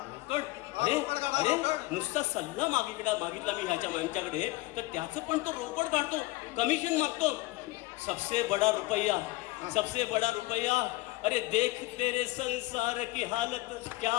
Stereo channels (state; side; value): quieter; right; 20.3 dB